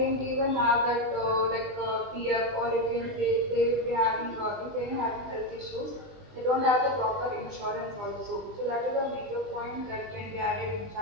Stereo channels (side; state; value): left; late; 20 ms